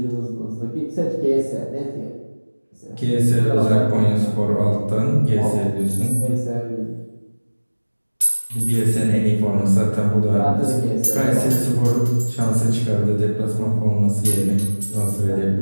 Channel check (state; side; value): inverted; both; correlation -1.00